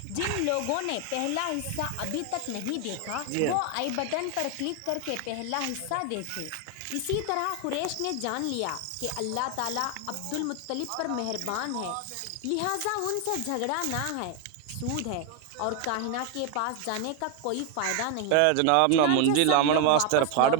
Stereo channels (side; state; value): both; different; correlation 0.01